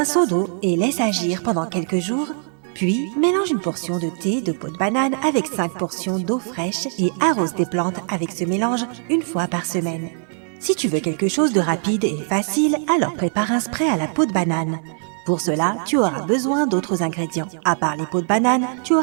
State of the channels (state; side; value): silent; left; 56 dB below the other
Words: seau d'eau et laisse agir pendant quelques jours. Puis, mélange une portion de thé de peau de banane avec 5 portions d'eau fraîche et arrose tes plantes avec ce mélange une fois par semaine. Si tu veux quelque chose de rapide et facile, alors prépare un spray à la peau de banane. Pour cela, tu auras besoin d'autres ingrédients. À part les peaux de banane, tu